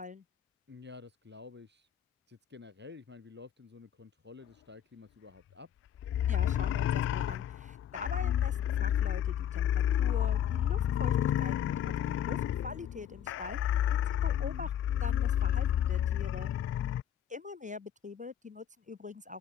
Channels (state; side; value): quieter; right; 10.0 dB